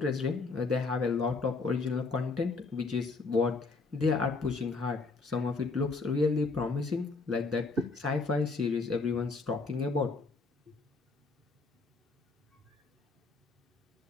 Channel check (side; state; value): right; quieter; 4.0 dB